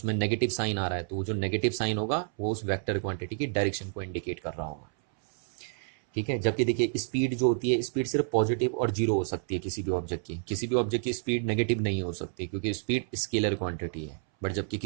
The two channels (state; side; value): silent; left; 58 dB below the other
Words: नेगेटिव साइन आ रहा है, तो वो जो नेगेटिव साइन होगा वो उस वेक्टर क्वांटिटी की डायरेक्शन को इंडिकेट कर रहा होगा। ठीक है, जबकि देखिए स्पीड जो होती है, स्पीड सिर्फ पॉजिटिव और जीरो हो सकती है किसी भी ऑब्जेक्ट की, किसी भी ऑब्जेक्ट की स्पीड नेगेटिव नहीं हो सकती क्योंकि स्पीड स्केलर क्वांटिटी है। बट जबकि